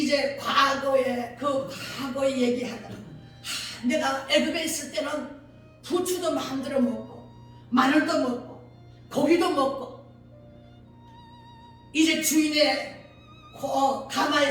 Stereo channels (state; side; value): identical; both; correlation 1.00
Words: 과거에 얘기하더라. 내가 애굽에 있을 때는 부추도 마음대로 먹고 마늘도 먹고 고기도 먹고 이제 주인의